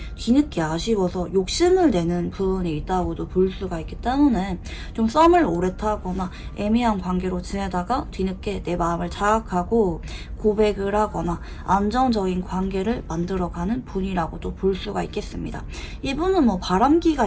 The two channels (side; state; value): both; identical; correlation 1.00